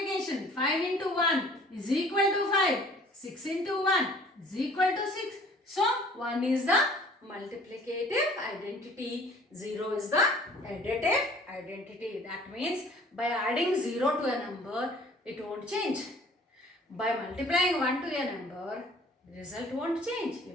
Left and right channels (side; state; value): both; normal; correlation 0.51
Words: 5 into 1 is equal to 5. 6 into 1 is equal to 6. So 1 is the multiplicative identity. 0 is the additive identity. That means by adding 0 to a number, it won't change. By multiplying 1 to a number, the result won't change. You